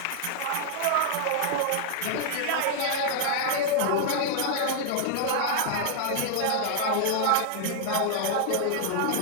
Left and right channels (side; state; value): both; different; correlation 0.00